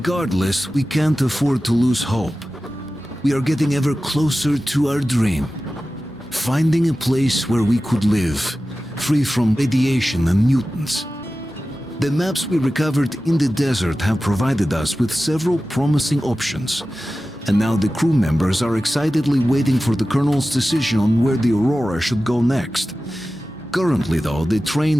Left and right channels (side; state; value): both; normal; correlation 0.95